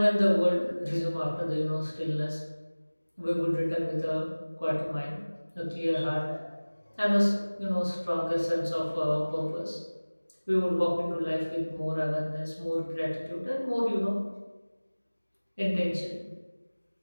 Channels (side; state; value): both; inverted; correlation -1.00